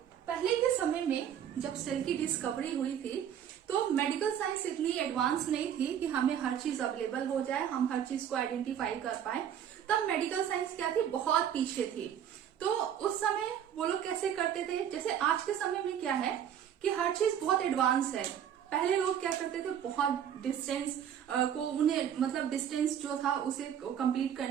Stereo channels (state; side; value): quieter; left; 9.3 dB